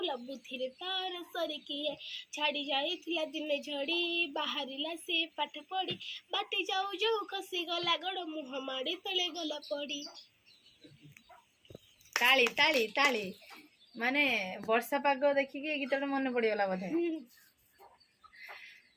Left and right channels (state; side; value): identical; both; correlation 1.00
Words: बुद्धि रे तार सरी किए छाड़ी जाइथिला दिने झड़ी बाहरिला से पाठ पढ़ी बाटे जाऊ जाऊ कसी गला गड़ मुह माड़ी तले गला पड़ी ताली ताली ताली माने वर्षा पाग देखिए गीत मन पड़गला बोधे